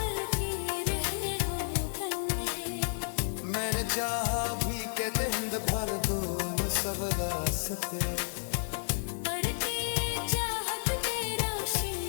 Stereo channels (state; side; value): silent; right; digital silence